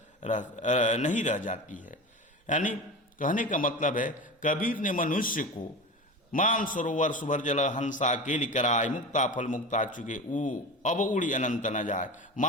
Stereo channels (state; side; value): normal; both; correlation 0.29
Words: जाती है। यानी कहने का मतलब है कबीर ने मनुष्य को मान सरोवर सुभर जल हंसा केली कराए, मुक्ता फल मुक्ता चुके अब उड़ी अनंत न जाए।